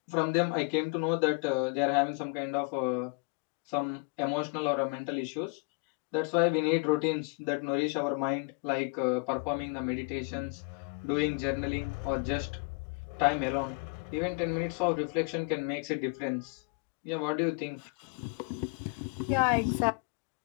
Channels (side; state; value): right; quieter; 35.1 dB